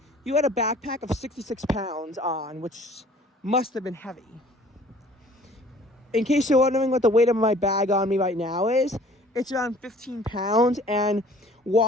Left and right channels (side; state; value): both; normal; correlation 0.52